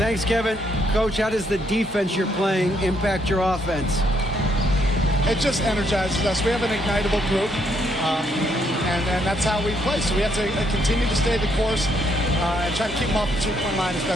Kevin. Coach, how does the defense you're playing impact your offense? It just energizes us. We have an ignitable group, and that's how we play. So we have to continue to stay the course and try to keep them off the two-point line as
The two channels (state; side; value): normal; both; correlation 0.72